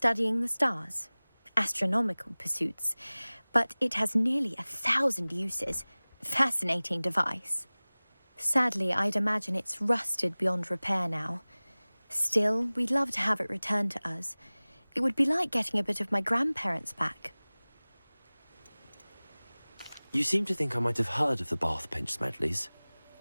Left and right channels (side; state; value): both; inverted; correlation -1.00